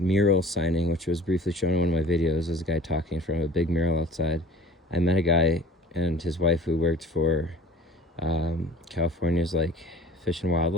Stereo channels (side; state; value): both; normal; correlation 0.46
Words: signing, which was briefly shown in one of my videos, there's a guy talking from a big mural outside. I met a guy and his wife who worked for California's like Fish and